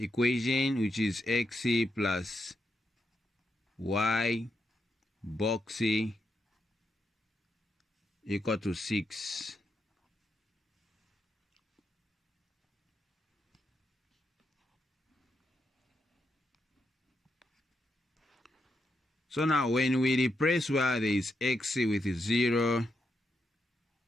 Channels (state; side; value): normal; both; correlation 0.83